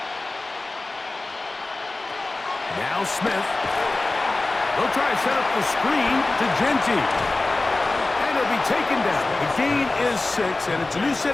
Now Smith. They'll try to set up the screen to Genty. And he'll be taken down. The gain is 6, and it's a new set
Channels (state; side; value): quieter; right; 3.1 dB